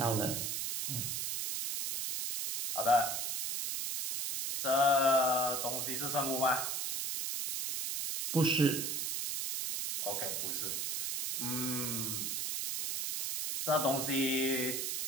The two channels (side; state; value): right; noise; hiss, 1 dB below the sound